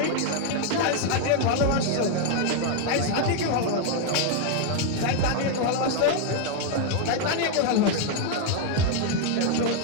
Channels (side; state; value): both; different; correlation 0.00